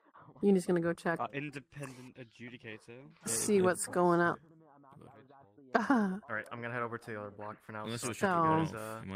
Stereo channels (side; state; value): both; identical; correlation 1.00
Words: Uni's gonna go check. Independent adjudicator. See what's going on. Alright, I'm gonna head over to the other block for now. Unless it was So- shipping it